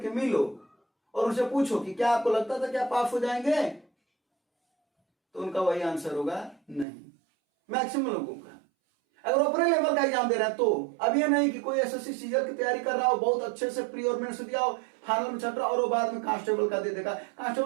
मिलो और उनसे पूछो कि क्या आपको लगता था कि आप पास हो जाएंगे? तो उनका वही आंसर होगा नहीं, मैक्सिमम लोगों का। अगर अपने लेवल का एग्जाम दे रहा है तो अब ये नहीं कि कोई एसएससी सीजर की तैयारी कर रहा हो, बहुत अच्छे से प्री और मेंस दिया हो, फाइनल में छट रहा और वो बाद में कांस्टेबल का दे देगा।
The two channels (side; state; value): left; drops out; at 6.9 s